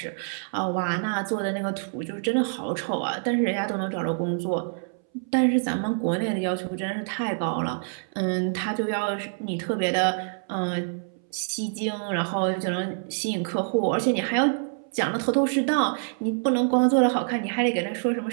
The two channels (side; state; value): left; silent; 61 dB below the other